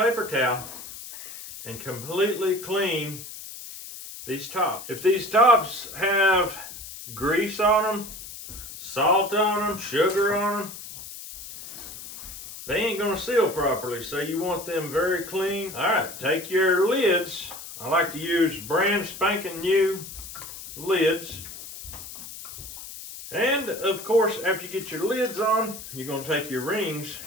towel and completely clean these tops. If these tops have grease on them, salt on them, sugar on them, they ain't gonna seal properly, so you want them very clean. All right, take your lids. I like to use brand spanking new lids. And of course, after you get your lids on, you're going to take your rings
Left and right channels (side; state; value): left; noise; hiss, 12 dB below the sound